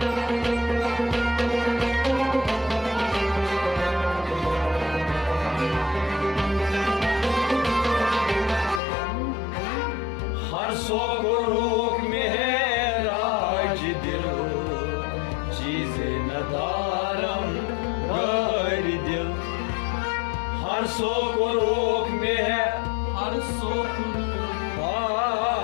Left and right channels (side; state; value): right; drops out; at 8.8 s